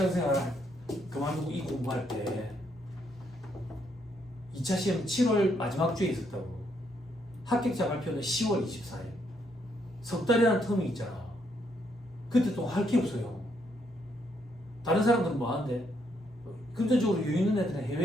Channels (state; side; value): normal; both; correlation 0.74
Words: 그만두고 이 공부할 때 2차 시험 7월 마지막 주에 있었다고. 합격자 발표는 10월 24일. 석 달이라는 텀이 있잖아. 그때 또 할 게 없어요. 다른 사람들은 뭐 하는데? 금전적으로 여유 있는 애들은